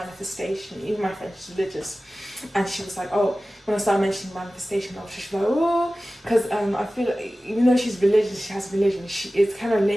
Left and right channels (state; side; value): normal; both; correlation 0.96